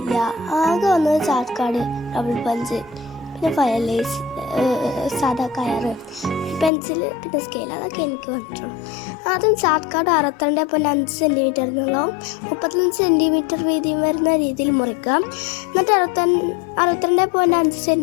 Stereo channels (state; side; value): drops out; right; at 6.7 s